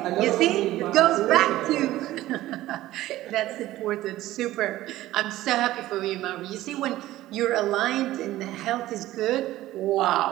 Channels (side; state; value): left; quieter; 15.5 dB